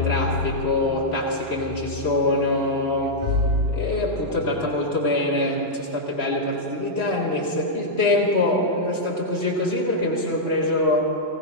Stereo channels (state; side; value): late; right; 3.0 ms